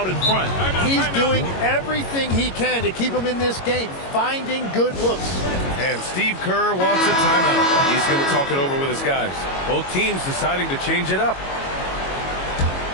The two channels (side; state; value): right; late; 22 ms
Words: in front. He's doing everything he can to keep him in this game, finding good looks. And Steve Kerr wants a timeout. He's going to talk it over with his guys. Both teams deciding to change it up.